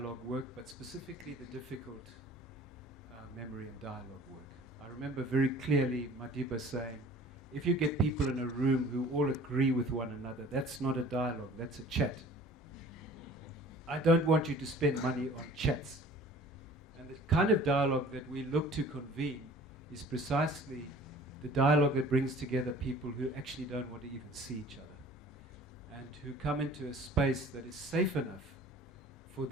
work, but specifically the difficult memory and dialogue work. I remember very clearly Madiba saying, if you get people in a room who all agree with one another, that's not a dialogue, that's a chat. I don't want you to spend money on chats. And the kind of dialogue that we look to convene is precisely the dialogue that brings together people who actually don't want to even see each other, and who come into a space that is safe enough for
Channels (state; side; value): normal; both; correlation 0.48